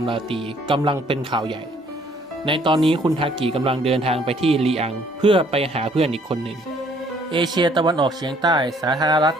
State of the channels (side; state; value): both; normal; correlation 0.62